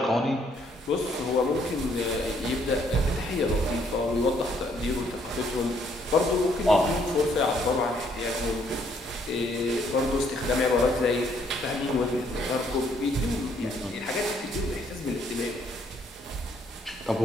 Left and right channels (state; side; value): normal; both; correlation 0.68